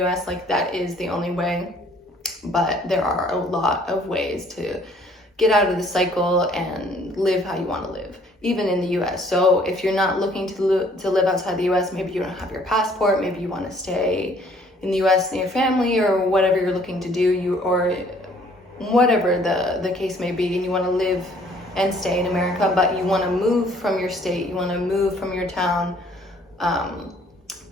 US like that is the only way, but there are a lot of ways to get out of the cycle and live how you want to live, even in the US. So if you're not looking to live outside the US, maybe you don't have your passport, maybe you want to stay in the US near your family, or whatever you're looking to do, or whatever the case may be, and you want to live and stay in America, but you want to move from your state, you want to move from your town,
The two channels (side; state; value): both; normal; correlation 0.60